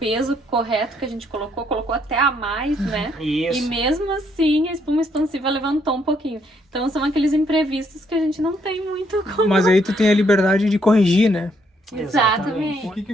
correto que a gente colocou até a mais, né? Isso. E mesmo assim a espuma expansiva levantou um pouquinho. Então são aqueles imprevistos que a gente não tem muito como... Mas aí tu tem a liberdade de corrigir, né? Exatamente. O que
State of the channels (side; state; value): both; normal; correlation 0.71